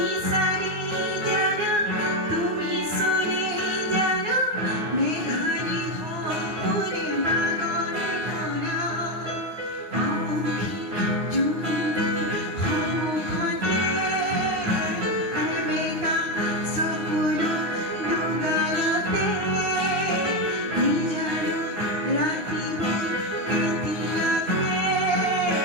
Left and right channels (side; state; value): left; late; 9.6 ms